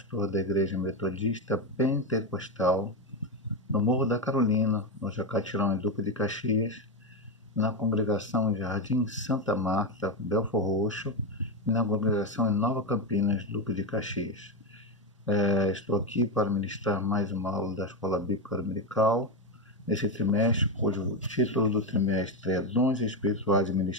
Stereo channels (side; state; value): both; normal; correlation 0.11